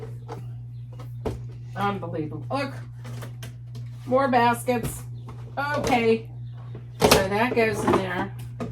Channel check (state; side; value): identical; both; correlation 1.00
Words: Unbelievable. Look. More baskets. Okay. So that goes in there.